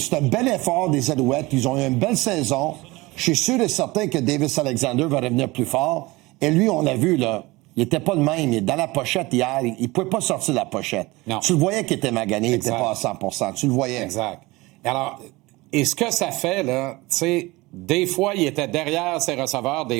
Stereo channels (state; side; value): quieter; left; 21.8 dB